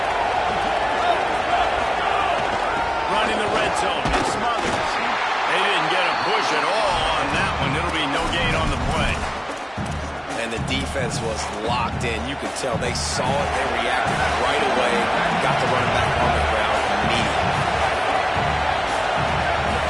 Running the red zone. It's Smothers. They didn't get a push at all on that one. It'll be no gain on the play. And the defense was locked in. You could tell they saw it. They reacted right away. Got the running back on the ground immediately.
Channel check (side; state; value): both; identical; correlation 1.00